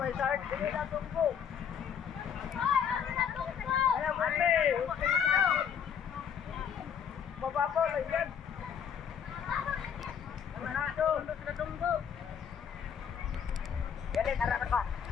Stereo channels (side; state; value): right; quieter; 7.8 dB